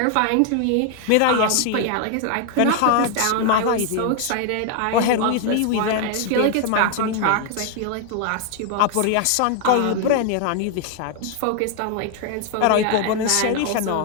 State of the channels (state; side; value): different; both; correlation 0.00